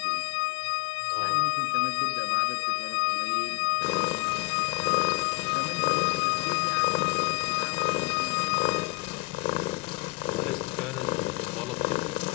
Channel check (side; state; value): right; quieter; 24.1 dB